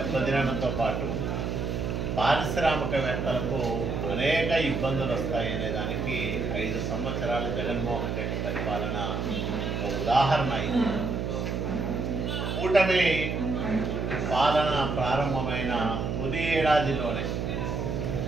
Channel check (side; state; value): right; noise; hum, 2 dB below the sound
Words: పాటు పారిశ్రామికవేత్తలకు అనేక ఇబ్బందులు వస్తాయనే దానికి 5 సంవత్సరాలు జగన్మోహన్ రెడ్డి పరిపాలన ఒక ఉదాహరణ అయింది. కూటమి పాలన ప్రారంభమైన తొలి ఏడాదిలోనే